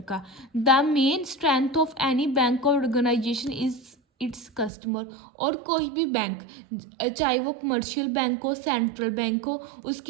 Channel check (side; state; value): left; drops out; at 4.7 s